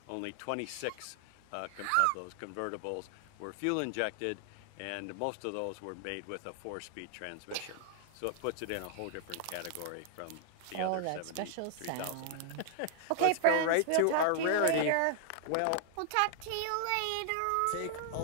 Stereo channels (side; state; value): both; different; correlation 0.00